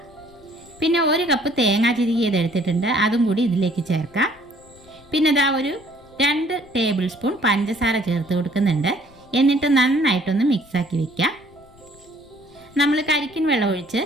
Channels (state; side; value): noise; left; rumble, 26 dB below the sound